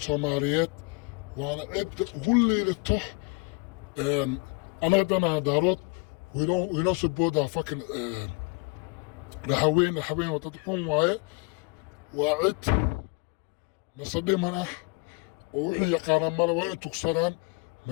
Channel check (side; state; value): right; quieter; 28.8 dB